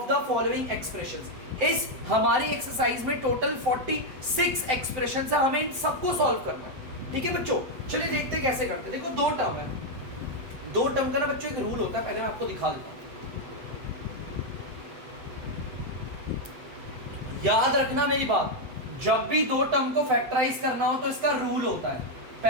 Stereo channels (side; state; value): left; late; 7.7 ms